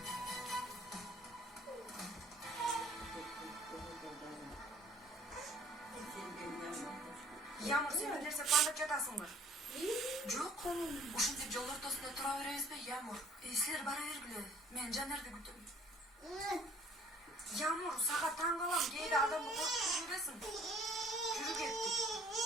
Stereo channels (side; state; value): both; normal; correlation 0.55